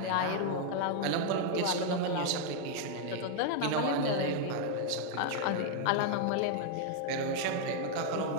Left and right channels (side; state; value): both; different; correlation 0.00